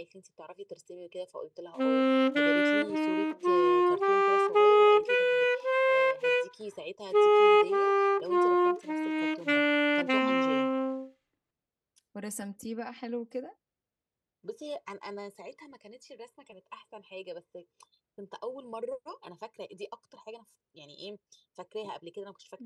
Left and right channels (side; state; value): both; identical; correlation 1.00